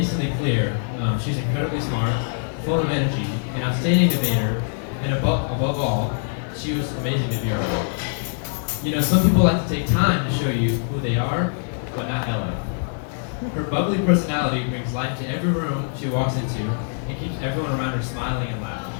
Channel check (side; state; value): right; silent; 63 dB below the other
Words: clear she's incredibly smart, full of energy, an outstanding debater, and above all, she was amazing to be around. You know, some people like to take time to show you who they are, but not Ella. Her bubbly personality brings life to every room she walks into and keeps everyone around her smiling and laughing.